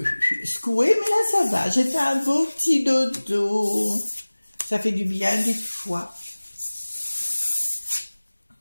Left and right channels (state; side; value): inverted; both; correlation -1.00